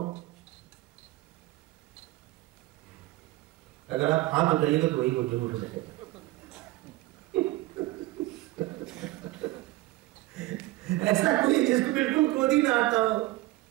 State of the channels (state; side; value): quieter; left; 18.7 dB